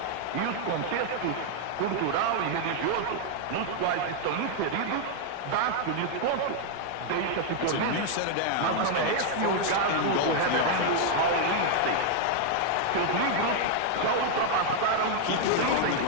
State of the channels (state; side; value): different; both; correlation 0.00